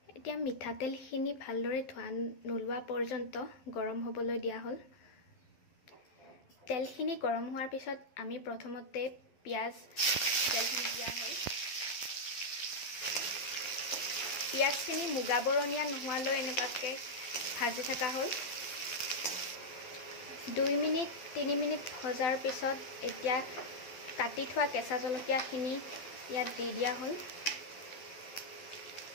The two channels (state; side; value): late; right; 12 ms